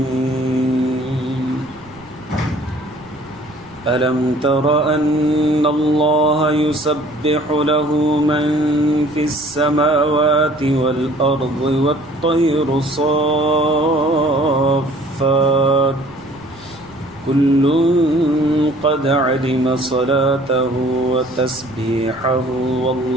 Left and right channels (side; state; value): right; noise; rumble, 24 dB below the sound